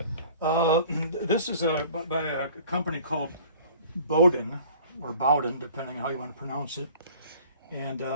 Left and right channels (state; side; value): inverted; both; correlation -0.49